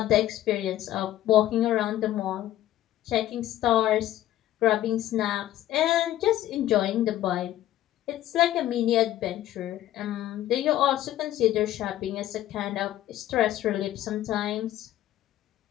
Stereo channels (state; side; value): quieter; right; 13.5 dB